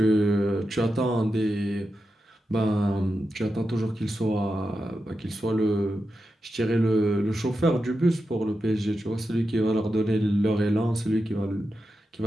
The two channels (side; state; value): both; normal; correlation 0.89